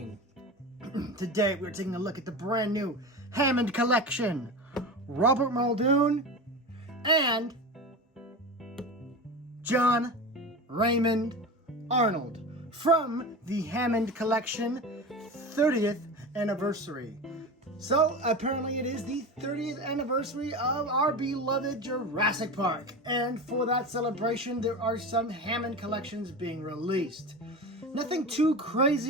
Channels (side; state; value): both; normal; correlation 0.27